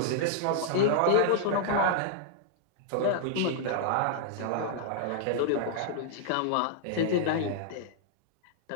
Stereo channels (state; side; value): different; both; correlation -0.01